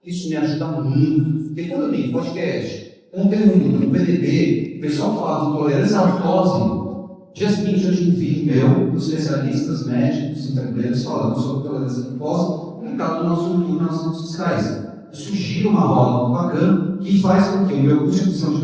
Isso me ajuda muito. Porque quando eu tenho podcast, conteúdo no PDB, o pessoal fala de intolerância à lactose. Dia seguinte eu tive um vídeo meu, dos especialistas médicos, enfermeiros, falando sobre intolerância à lactose, publicado no nosso YouTube, nas redes sociais. Isso gira uma roda muito bacana que faz com que o meu custo de aquisição de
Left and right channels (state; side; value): identical; both; correlation 1.00